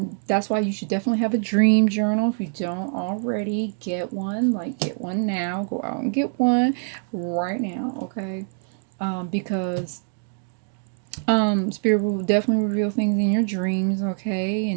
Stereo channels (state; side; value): silent; left; 58 dB below the other